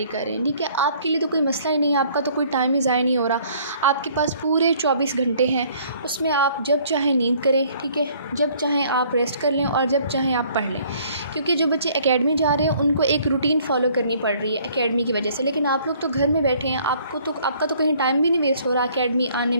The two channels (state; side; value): inverted; both; correlation -0.59